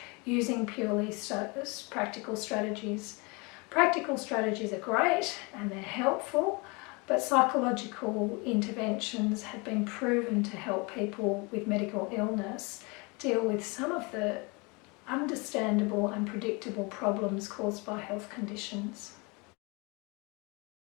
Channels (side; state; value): right; quieter; 28.7 dB